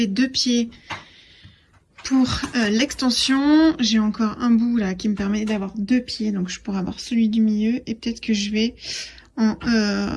2 pieds pour l'extension. J'ai encore un bout là qui me permet d'avoir 2 pieds. Donc je pourrais avoir celui du milieu. Et peut-être que je vais en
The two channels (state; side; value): identical; both; correlation 1.00